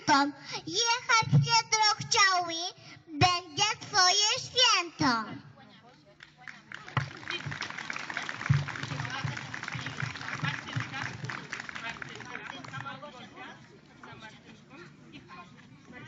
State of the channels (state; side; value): identical; both; correlation 1.00